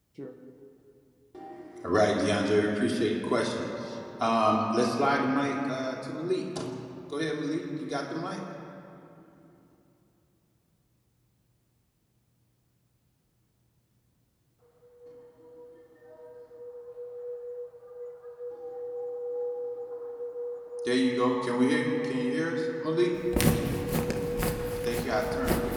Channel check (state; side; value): identical; both; correlation 1.00